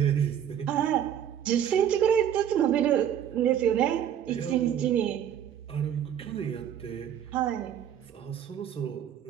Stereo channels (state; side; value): quieter; left; 9.7 dB